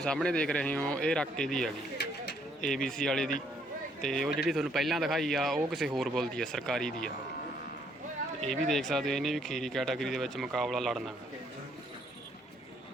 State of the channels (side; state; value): both; normal; correlation 0.69